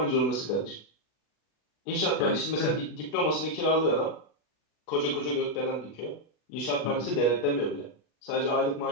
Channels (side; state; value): right; late; 40 ms